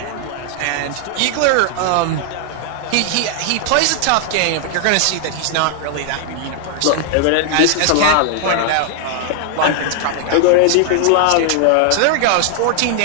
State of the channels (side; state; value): both; different; correlation 0.00